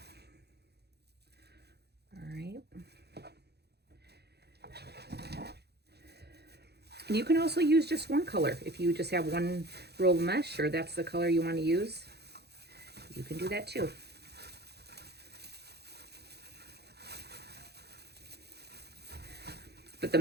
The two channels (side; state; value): left; late; 0.48 ms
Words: All right. And you can also use just one color. If you just have one roll of mesh or that's the color you want to use, you can do that too. But the